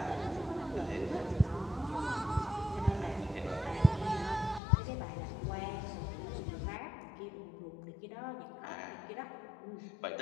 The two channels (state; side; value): drops out; right; at 4.6 s